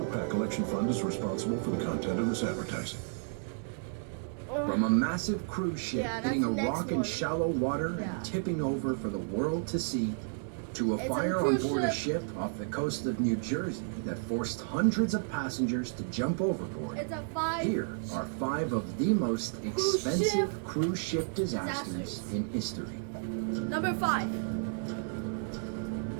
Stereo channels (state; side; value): silent; left; 56 dB below the other